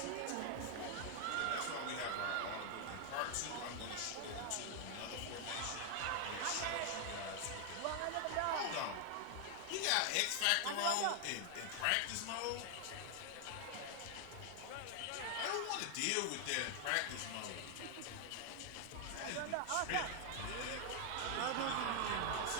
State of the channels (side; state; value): both; different; correlation 0.00